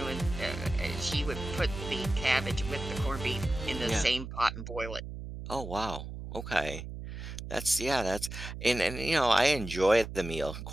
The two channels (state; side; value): noise; right; hum, 9 dB below the sound